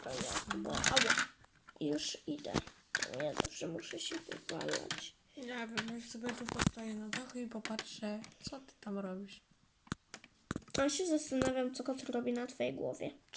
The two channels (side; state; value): both; identical; correlation 1.00